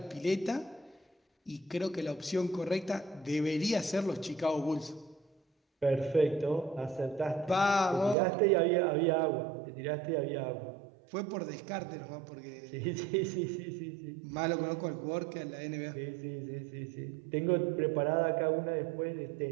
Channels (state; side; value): drops out; left; at 8.2 s